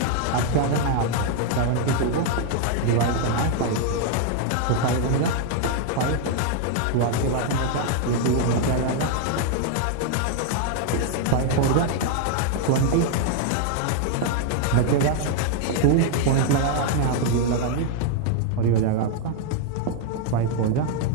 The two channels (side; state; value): both; different; correlation 0.00